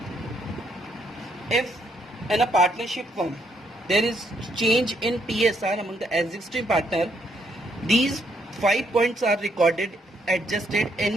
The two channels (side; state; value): both; normal; correlation 0.73